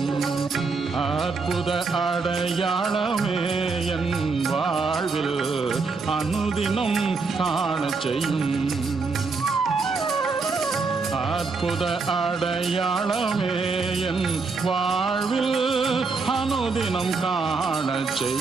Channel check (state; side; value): quieter; left; 4.4 dB